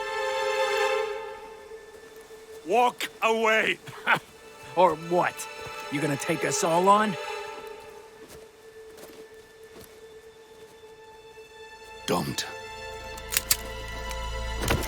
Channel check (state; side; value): identical; both; correlation 1.00